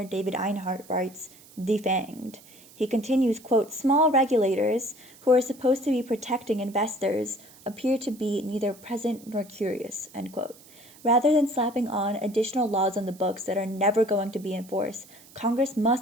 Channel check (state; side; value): noise; right; hiss, 23 dB below the sound